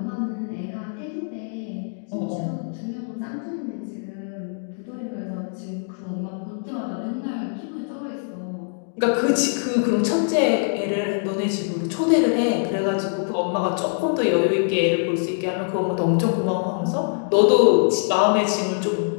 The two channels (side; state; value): right; silent; 59 dB below the other